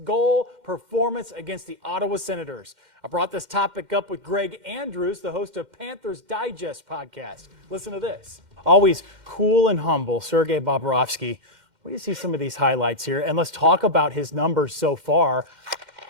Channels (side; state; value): left; late; 2.1 ms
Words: performance against the Ottawa Senators. I brought this topic up with Greg Andrews, the host of Panthers Digest podcast. Listen to this. Always cool and humble, Sergei Bobrovsky. What do you see some of these highlights here? And let's talk about his numbers so far.